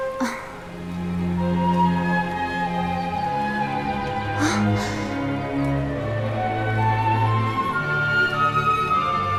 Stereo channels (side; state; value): both; identical; correlation 1.00